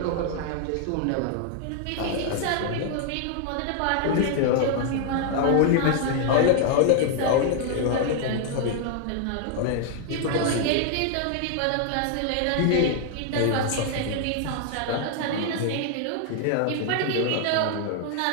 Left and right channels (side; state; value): both; different; correlation 0.00